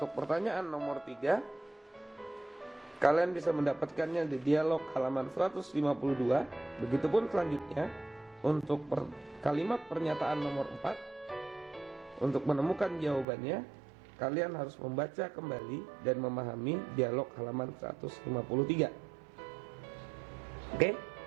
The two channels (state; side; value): drops out; left; at 13.2 s